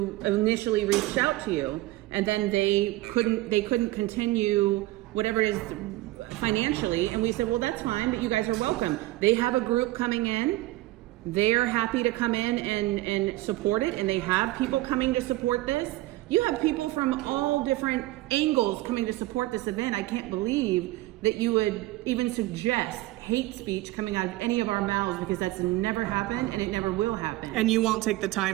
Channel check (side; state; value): left; quieter; 17.9 dB